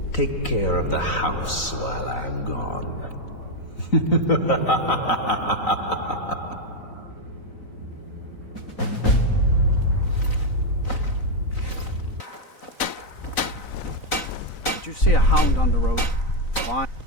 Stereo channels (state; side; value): late; right; 4.0 ms